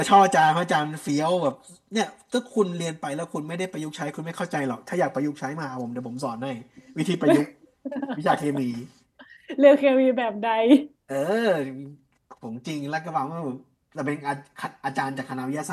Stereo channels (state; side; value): identical; both; correlation 1.00